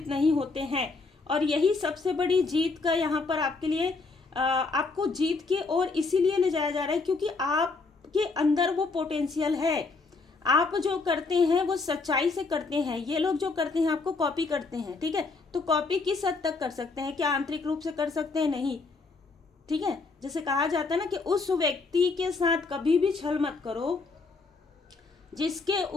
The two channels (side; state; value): right; quieter; 4.0 dB